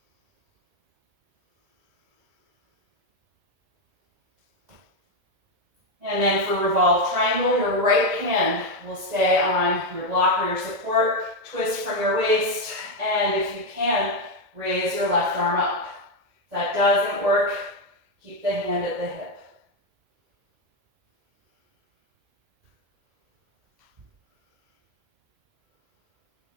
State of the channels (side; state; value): left; late; 2.0 ms